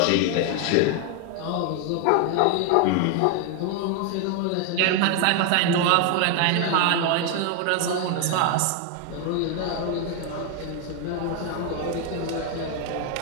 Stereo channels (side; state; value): both; different; correlation 0.01